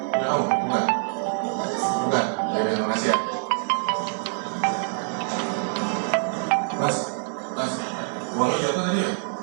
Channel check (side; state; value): left; silent; digital silence